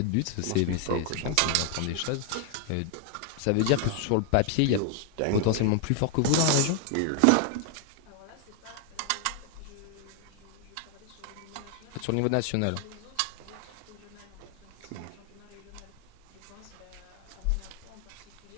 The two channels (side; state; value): both; different; correlation 0.00